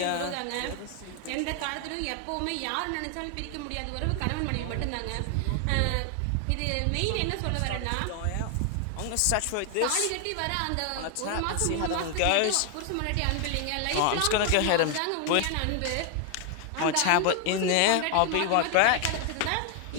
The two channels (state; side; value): different; both; correlation 0.00